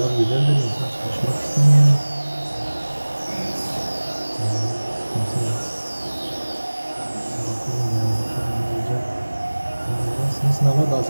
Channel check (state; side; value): inverted; both; correlation -1.00